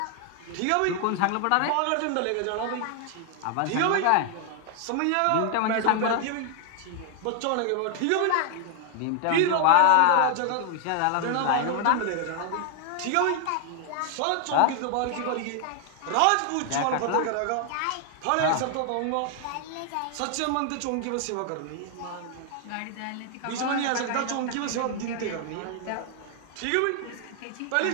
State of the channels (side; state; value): both; different; correlation 0.00